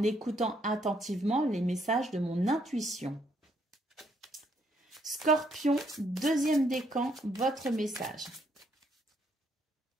écoutant attentivement les messages de mon intuition. Scorpion, deuxième décan, votre message.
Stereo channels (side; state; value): both; normal; correlation 0.71